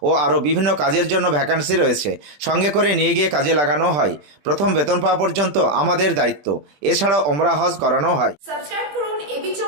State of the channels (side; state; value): left; late; 20 ms